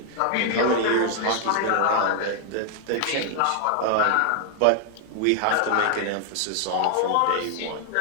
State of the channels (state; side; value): different; both; correlation 0.00